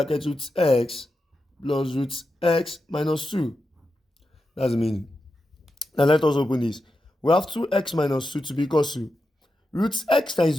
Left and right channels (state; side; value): normal; both; correlation 0.89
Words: root x plus root x minus 2. That's the meaning. Now let us open this. We have 2x minus 2 to be equal to root x